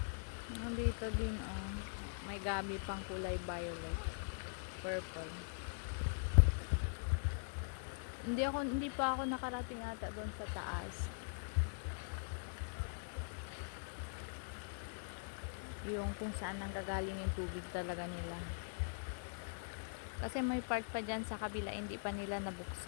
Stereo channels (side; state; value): right; silent; digital silence